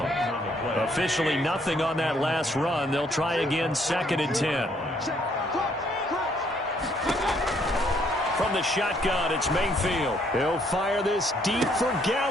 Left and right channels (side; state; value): both; normal; correlation 0.68